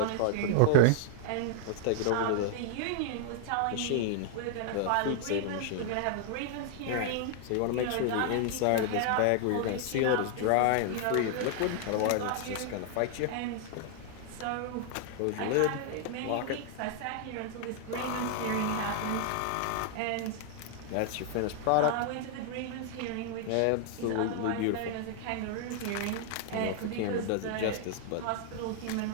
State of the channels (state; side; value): different; both; correlation 0.00